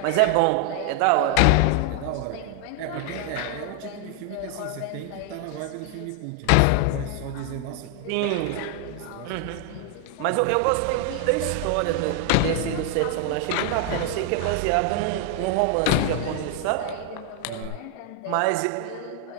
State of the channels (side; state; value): both; different; correlation 0.00